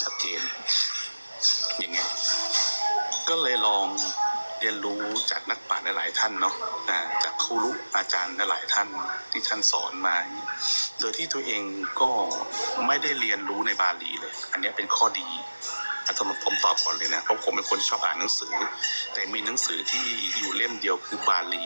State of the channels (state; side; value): inverted; both; correlation -1.00